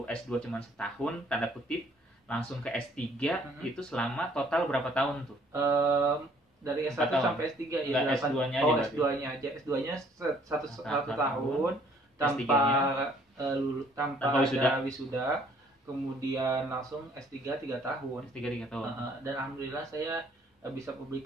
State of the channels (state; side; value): normal; both; correlation 0.61